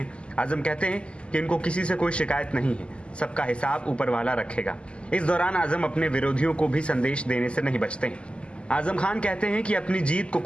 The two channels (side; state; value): right; late; 0.053 ms